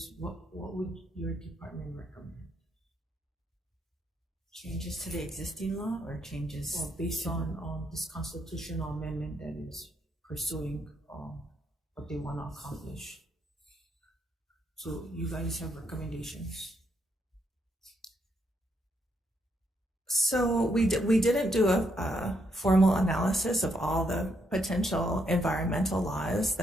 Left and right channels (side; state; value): both; normal; correlation 0.76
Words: what would your department recommend? Changes to the existing law or changes? Well, based on this constitutional amendment that is pursuing what they want to accomplish. So you guys have recommendations? So we didn't do a formal analysis of all the potential environmental laws